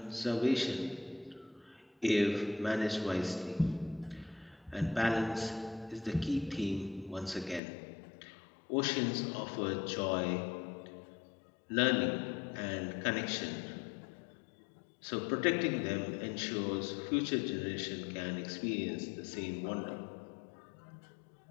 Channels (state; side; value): drops out; right; at 7.6 s